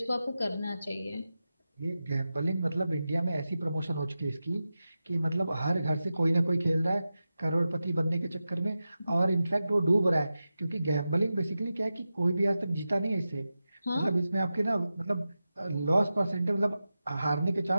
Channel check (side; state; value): both; inverted; correlation -0.93